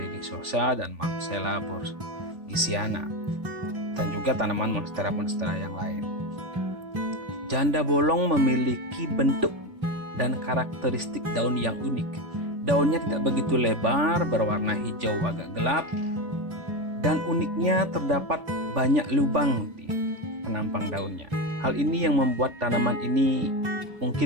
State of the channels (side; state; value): left; late; 3.5 ms